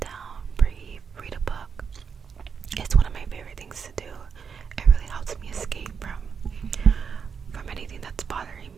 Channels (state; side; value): quieter; left; 6.4 dB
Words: down, breathe, read a book. It's one of my favorite things to do. It really helps me escape from anything that's bothering